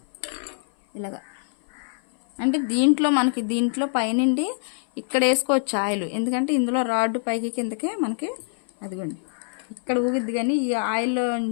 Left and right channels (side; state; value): right; silent; 56 dB below the other